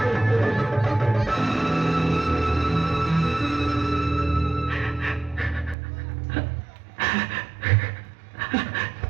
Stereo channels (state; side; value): drops out; left; at 5.8 s